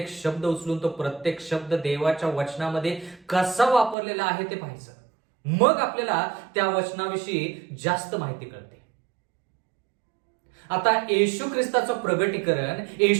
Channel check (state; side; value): drops out; left; at 4.0 s